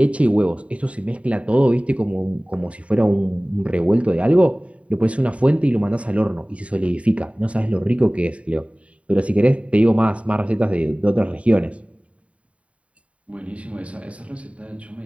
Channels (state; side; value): late; left; 0.065 ms